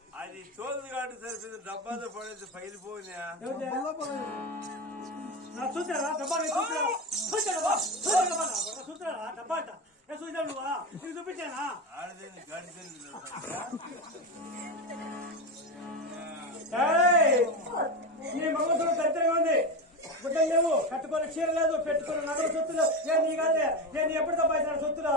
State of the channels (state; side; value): normal; both; correlation 0.18